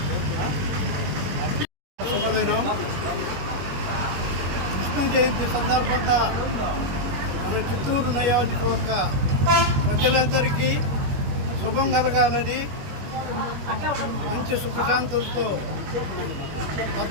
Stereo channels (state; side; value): late; left; 21 ms